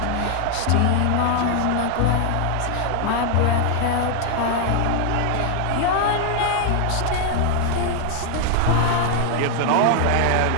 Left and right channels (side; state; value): both; different; correlation 0.00